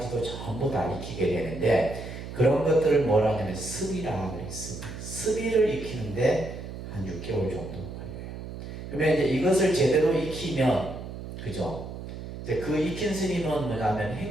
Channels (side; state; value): right; noise; hum, 10 dB below the sound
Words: 전부 다 익히게 되는데 그런 것들을 뭐라 하냐면 습이라 그래요. 습이를 익히는데 한 6개월 정도 걸려요. 그러면 이제 이것을 제대로 익히면 그죠? 이제 그 익힌 스님은 뭐냐면